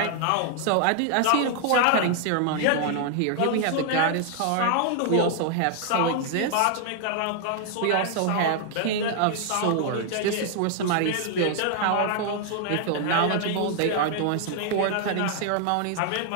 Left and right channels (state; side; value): different; both; correlation 0.00